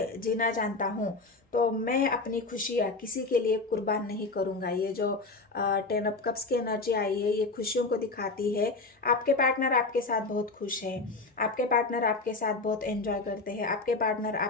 जीना जानता हूँ। तो मैं अपनी खुशियाँ किसी के लिए कुर्बान नहीं करूँगा। ये जो 10 ऑफ कप्स की एनर्जी आई है, ये खुशियों को दिखाती है। आपके पार्टनर आपके साथ बहुत खुश है, आपके पार्टनर आपके साथ बहुत एंजॉय करते हैं, आपके पार्टनर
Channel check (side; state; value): right; quieter; 3.6 dB